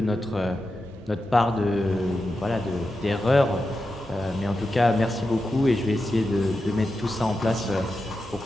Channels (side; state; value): both; normal; correlation 0.90